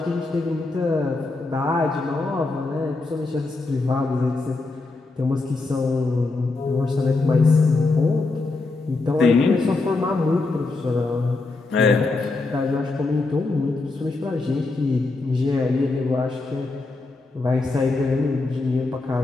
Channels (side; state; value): right; quieter; 3.4 dB